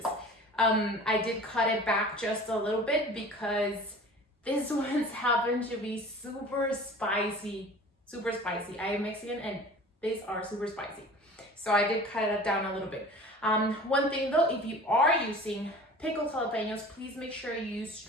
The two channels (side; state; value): both; normal; correlation 0.42